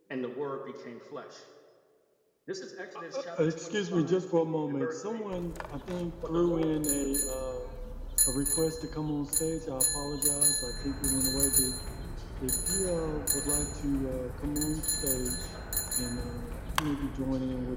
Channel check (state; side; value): identical; both; correlation 1.00